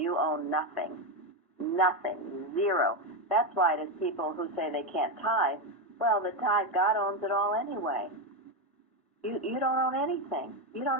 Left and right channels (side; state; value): both; normal; correlation 0.10